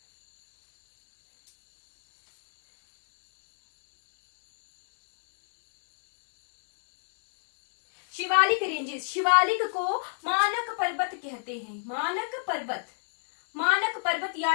Shivalik ranges, Shivalik को मानक पर्वत कहते हैं। मानक पर्वत, मानक पर्वत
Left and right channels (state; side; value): silent; right; digital silence